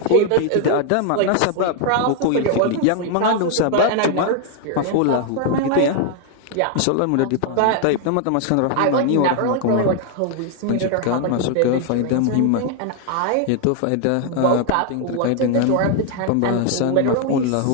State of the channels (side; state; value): both; different; correlation 0.00